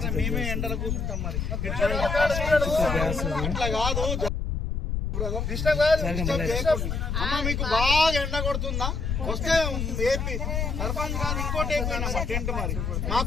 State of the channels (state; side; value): noise; left; rumble, 1 dB below the sound